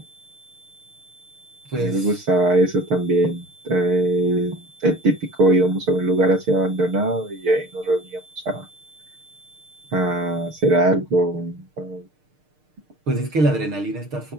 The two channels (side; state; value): left; late; 6.6 ms